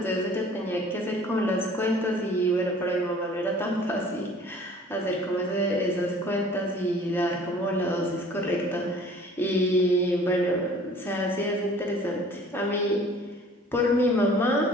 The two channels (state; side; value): normal; both; correlation 0.50